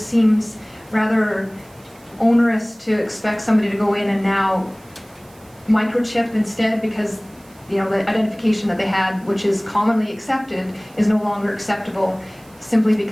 seems rather onerous to expect somebody to go in and now microchip instead, because you know the identification that they had, which is commonly accepted, is no longer acceptable simply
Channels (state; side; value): noise; right; hiss, 28 dB below the sound